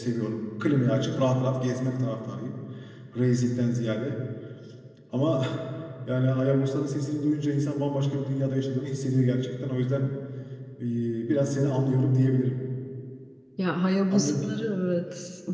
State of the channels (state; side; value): identical; both; correlation 1.00